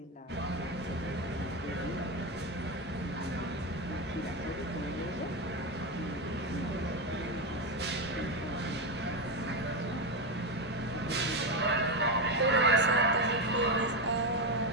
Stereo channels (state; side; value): normal; both; correlation 0.12